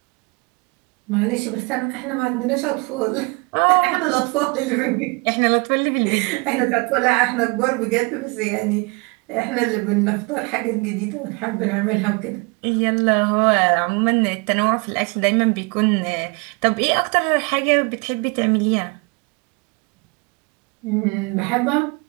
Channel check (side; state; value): left; quieter; 29.4 dB